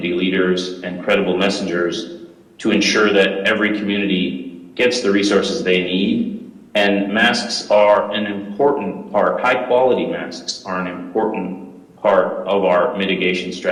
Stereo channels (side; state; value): both; identical; correlation 1.00